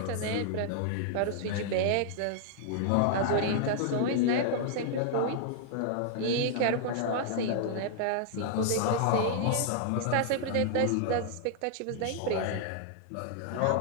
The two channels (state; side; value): different; both; correlation -0.01